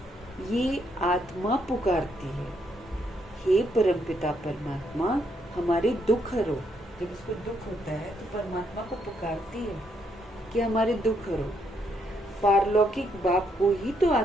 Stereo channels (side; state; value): both; normal; correlation 0.75